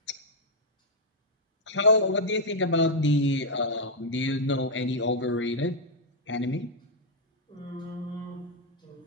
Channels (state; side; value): normal; both; correlation -0.03